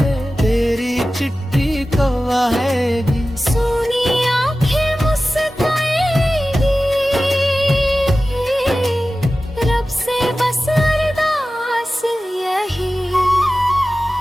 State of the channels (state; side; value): normal; both; correlation 0.95